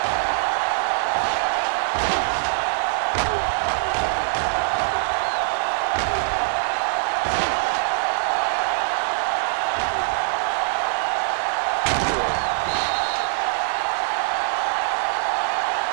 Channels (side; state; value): left; silent; digital silence